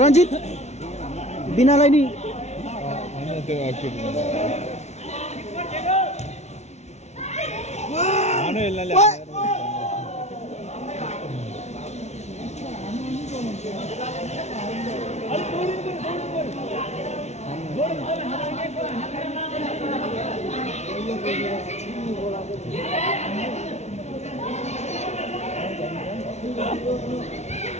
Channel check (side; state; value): right; late; 0.32 ms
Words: रञ्जित बिनालाई नि